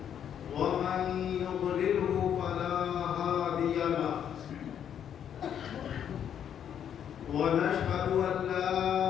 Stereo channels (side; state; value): right; quieter; 9.1 dB